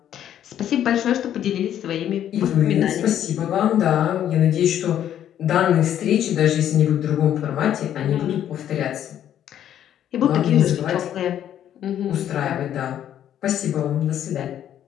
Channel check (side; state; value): right; quieter; 10.6 dB